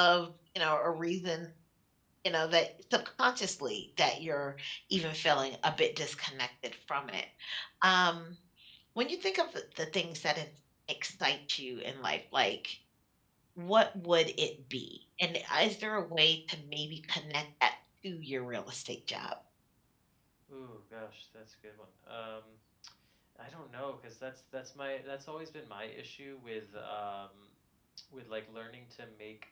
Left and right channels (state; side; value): identical; both; correlation 1.00